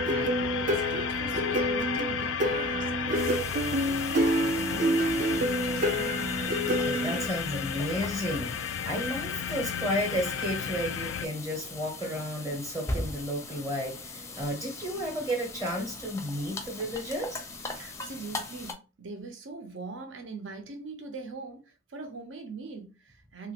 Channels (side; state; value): both; normal; correlation 0.42